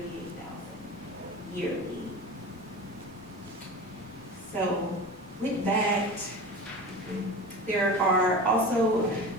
yearly. So with that, there are also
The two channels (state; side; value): normal; both; correlation 0.32